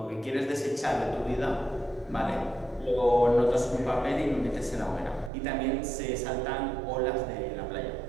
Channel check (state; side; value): drops out; left; at 5.3 s